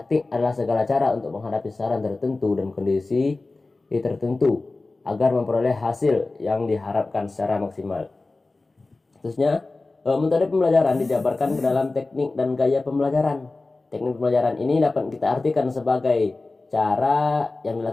adalah segala cara untuk menghadapi sasaran tertentu dan kondisi tertentu agar memperoleh hasil yang diharapkan secara maksimal. Terusnya, metode pembelajaran dijabarkan ke dalam teknik dan gaya pembelajaran. Teknik pembelajaran ini dapat kita artikan sebagai cara yang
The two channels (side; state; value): right; quieter; 3.3 dB